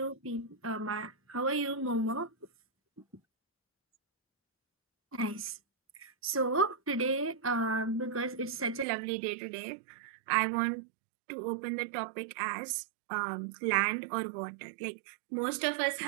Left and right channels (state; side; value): drops out; left; at 8.8 s